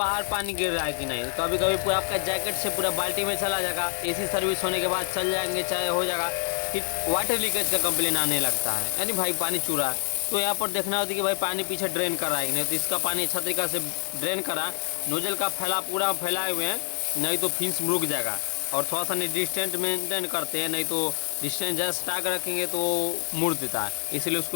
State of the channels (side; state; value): right; silent; 60 dB below the other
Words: पानी गिर रहा है कि नहीं। कभी कभी पूरा आपका जैकेट से पूरा बाल्टी में चला जाएगा, एसी सर्विस होने के बाद चल जाएंगे, चाहे हो जाएगा, फिर वाटर लीकेज का कंप्लेन आने लगता है, यानी भाई पानी चूरा है। तो यहाँ पर देखना होता है कि भाई पानी पीछे ड्रेन कर रहा है कि नहीं, तो इसका पानी अच्छा तरीका से ड्रेन करा, नोजल का पूरा फैलाए हुए हैं, नहीं तो फिंस रुक जाएगा। और थोड़ा सा डिस्टेंस मेंटेन करते हैं, नहीं तो डिस्टेंस ज़्यादा सटा कर रखेंगे तो मुड़ देता है, इसलिए